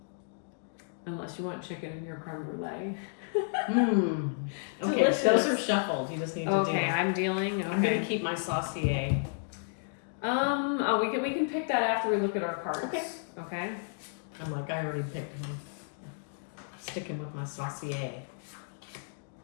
Unless you want chicken in your creme brulee. Mm. Okay, Delicious. those are shuffled. You just need to Okay, deal. I'm dealing. I'm gonna Okay. keep my saucier. Oh, we can pick that after we look at our cards. Okay. Okay. I'm like, I already picked one. Sticking with my saucier.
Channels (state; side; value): silent; right; digital silence